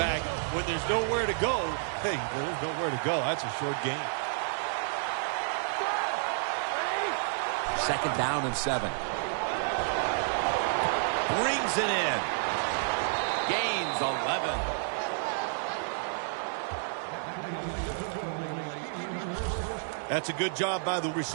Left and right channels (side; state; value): left; silent; digital silence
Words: When there's nowhere to go, hey, there's nowhere to go. That's a short game. 2nd down and 7. Brings it in. Gains 11. That's a good job by the